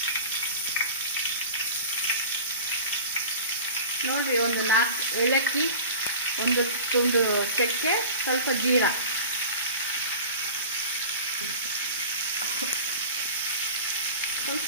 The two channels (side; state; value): both; inverted; correlation -0.37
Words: ನೋಡಿ, ಒಂದು 4 ಏಲಕ್ಕಿ, ಒಂದು ತುಂಡು ಚಕ್ಕೆ, ಸ್ವಲ್ಪ ಜೀರಾ, ಸ್ವಲ್ಪ